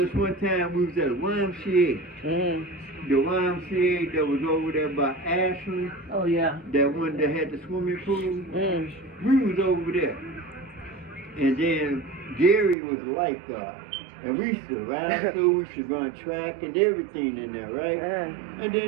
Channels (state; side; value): drops out; left; at 12.8 s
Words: one time, we was at a YMCA. The YMCA that was over there by Ashland. Oh, yeah. That one that had the swimming pool. We was over there. And then Gary was a lifeguard. And we used to ride through, we used to run track and everything in there, right? And then